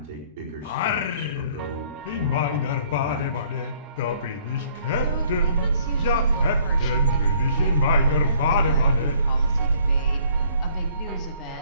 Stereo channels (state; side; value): inverted; both; correlation -0.60